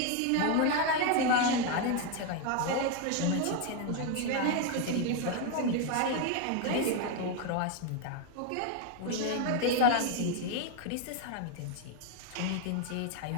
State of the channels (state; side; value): different; both; correlation 0.01